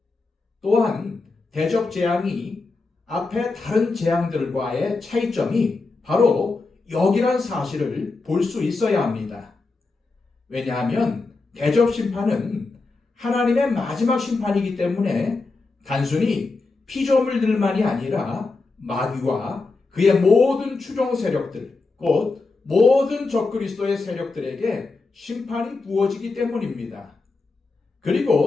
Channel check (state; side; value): quieter; right; 3.8 dB